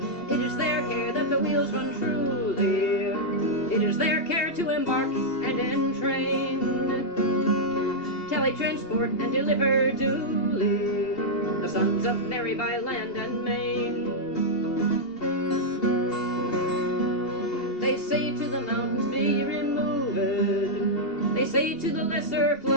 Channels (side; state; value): right; late; 2.8 ms